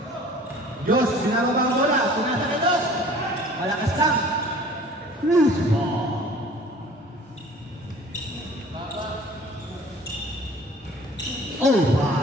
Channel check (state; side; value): normal; both; correlation 0.48